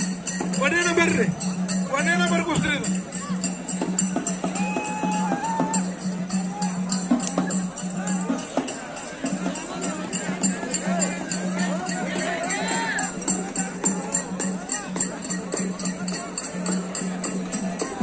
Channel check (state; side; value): identical; both; correlation 1.00